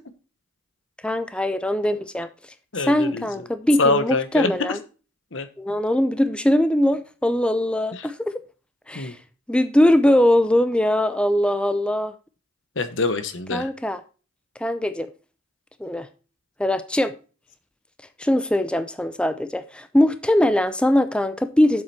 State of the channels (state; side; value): normal; both; correlation 0.83